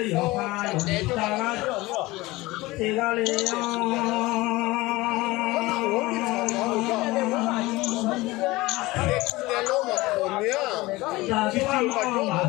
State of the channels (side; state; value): right; quieter; 20.4 dB